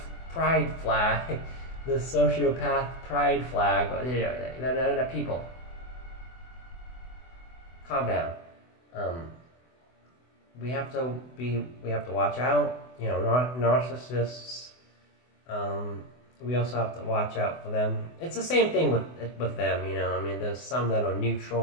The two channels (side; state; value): right; late; 24 ms